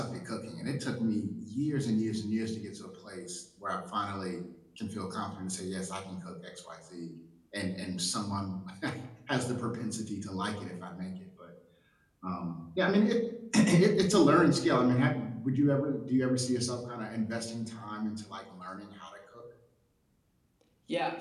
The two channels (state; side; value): identical; both; correlation 1.00